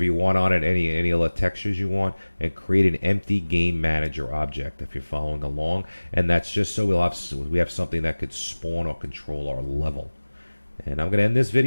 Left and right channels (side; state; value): both; inverted; correlation -1.00